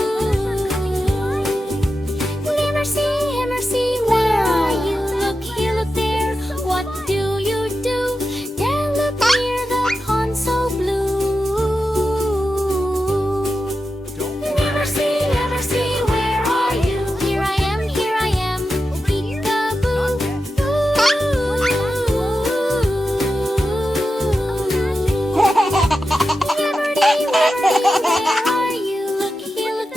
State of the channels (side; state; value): both; normal; correlation 0.90